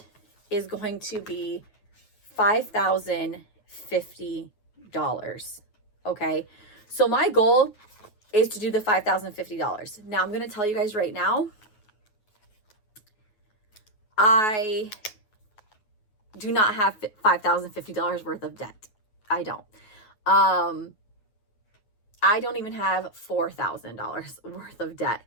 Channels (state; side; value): late; right; 9.3 ms